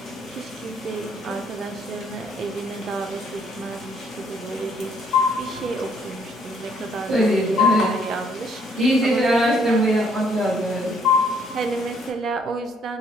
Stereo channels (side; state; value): both; normal; correlation 0.66